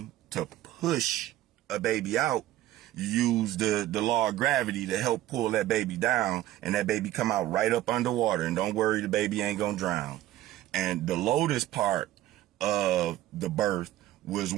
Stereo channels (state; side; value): quieter; left; 14.4 dB